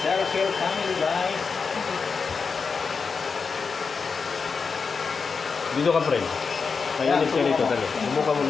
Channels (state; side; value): quieter; right; 5.2 dB